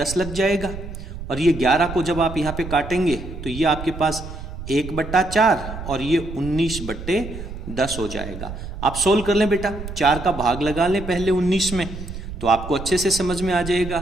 लग जाएगा, और ये 11 को जब आप यहाँ पे काटेंगे तो ये आपके पास 1/4 और ये 19/10 हो जाएगा। आप सोल्व कर लें बेटा, 4 का भाग लगा लें पहले 19 में, तो आपको अच्छे से समझ में आ जाएगा।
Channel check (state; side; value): noise; right; rumble, 10 dB below the sound